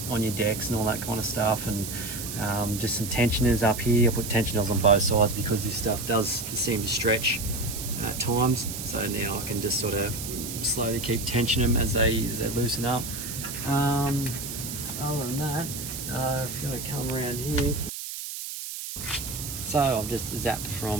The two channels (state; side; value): noise; right; hiss, 7 dB below the sound